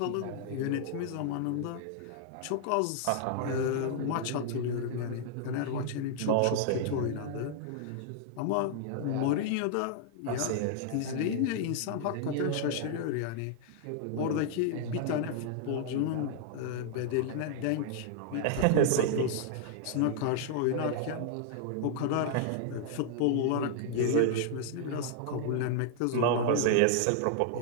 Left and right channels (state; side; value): different; both; correlation -0.01